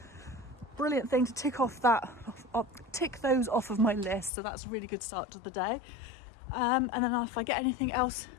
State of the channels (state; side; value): drops out; right; at 4.3 s